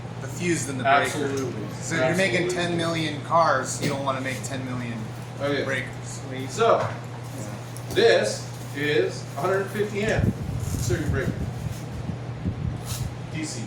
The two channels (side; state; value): both; identical; correlation 1.00